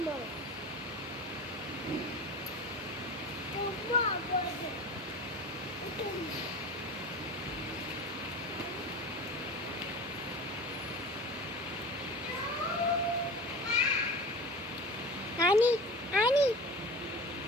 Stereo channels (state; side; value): normal; both; correlation 0.34